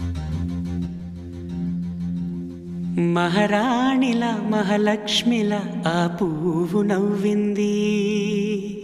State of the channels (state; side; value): identical; both; correlation 1.00